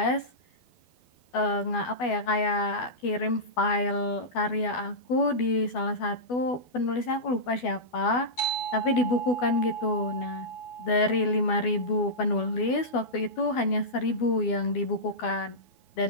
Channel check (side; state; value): right; late; 12 ms